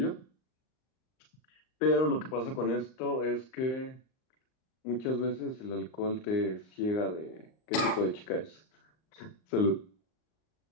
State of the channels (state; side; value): late; right; 38 ms